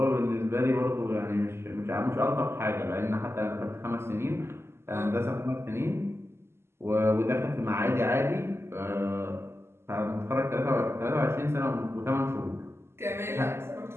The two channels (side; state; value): left; late; 0.12 ms